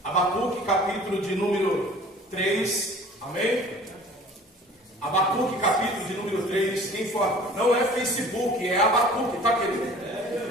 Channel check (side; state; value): both; normal; correlation 0.47